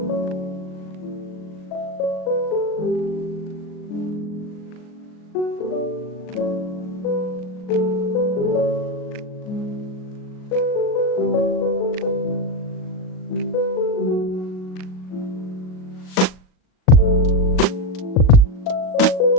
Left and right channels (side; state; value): right; late; 38 ms